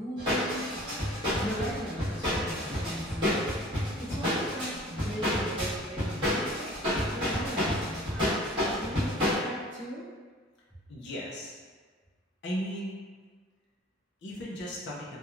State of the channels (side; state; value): both; normal; correlation 0.48